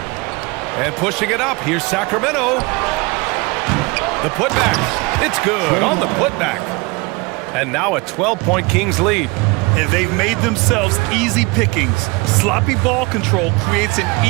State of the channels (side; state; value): left; quieter; 26.2 dB